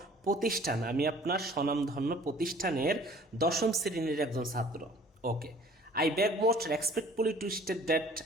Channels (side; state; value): both; normal; correlation 0.52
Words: প্রতিষ্ঠান, আমি আপনার স্বনামধন্য প্রতিষ্ঠানের 10ম শ্রেণীর একজন ছাত্র। Okay, I beg most respectfully to state that